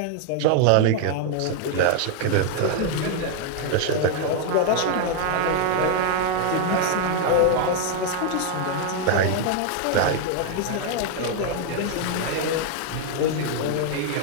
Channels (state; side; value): different; both; correlation 0.00